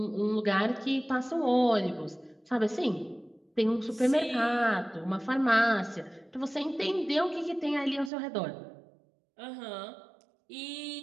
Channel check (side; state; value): left; drops out; at 8.1 s